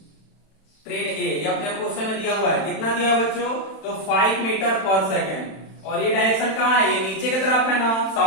ये अपने क्वेश्चन में दिया हुआ है, कितना दिया है बच्चों, तो 5 मीटर पर सेकेंड। और ये डायरेक्शन कहां है, ये नीचे की तरफ है ना,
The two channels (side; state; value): right; late; 31 ms